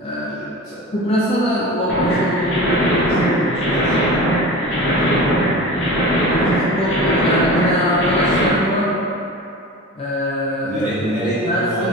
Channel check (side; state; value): both; normal; correlation 0.33